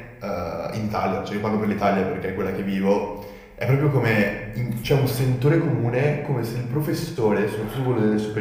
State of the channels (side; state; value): both; identical; correlation 1.00